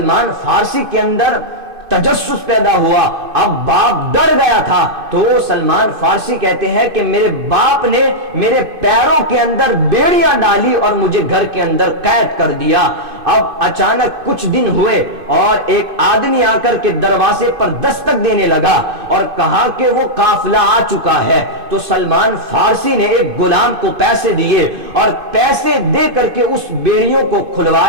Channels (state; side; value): late; left; 2.5 ms